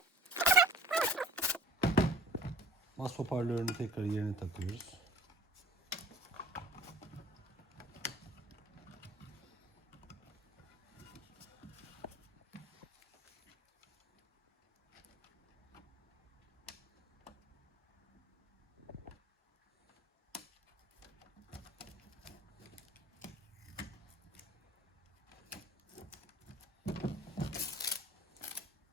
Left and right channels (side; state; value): both; normal; correlation 0.48